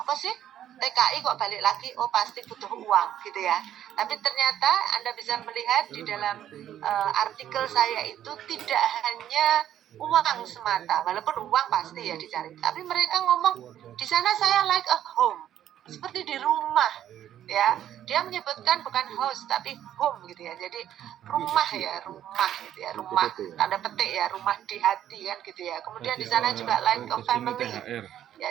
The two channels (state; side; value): quieter; left; 11.1 dB